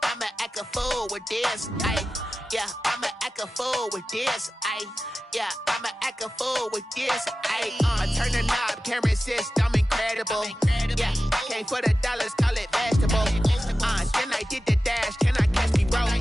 I'ma act a fool with this. Yeah, I'ma act a fool with this. Yeah, I'ma act a fool with this. I turn the knob, can't resist, I'm incredible. Yeah, came for the dollars, call it vegetable. Then I did the dash, can I catch me roll?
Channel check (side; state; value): both; normal; correlation 0.94